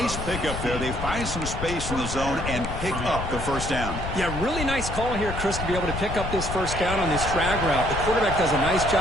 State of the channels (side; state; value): left; noise; rumble, 6 dB below the sound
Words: pickup there. They find some space in the zone and pick up the first down. Yeah, really nice call here, Chris, to be able to pick up this first down on this drag route. The quarterback does a nice